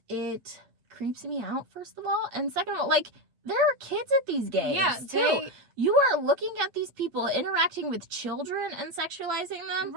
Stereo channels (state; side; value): late; left; 8.2 ms